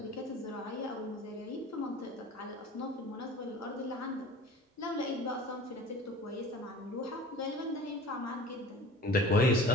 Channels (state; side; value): normal; both; correlation 0.42